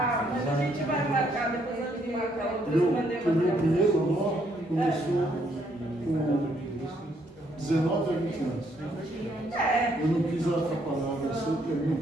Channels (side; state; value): both; normal; correlation 0.71